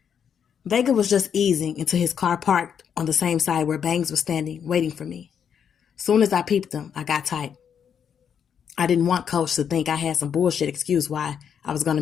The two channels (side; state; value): right; quieter; 7.8 dB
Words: Vega was just easing into his car parked on the same side where Bangs was standing, waiting for me. Soon as I peeped him, I got tight. I didn't want Coach to think I had some bullshit excuse why I was going